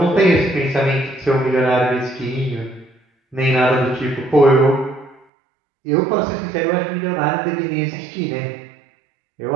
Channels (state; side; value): drops out; left; at 5.2 s